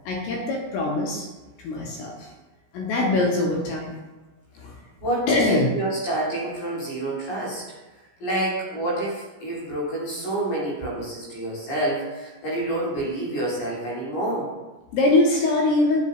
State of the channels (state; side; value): late; right; 17 ms